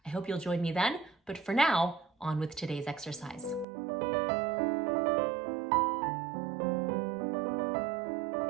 I hope you'll join me then, but for now, on with today's exercise.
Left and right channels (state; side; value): drops out; left; at 3.7 s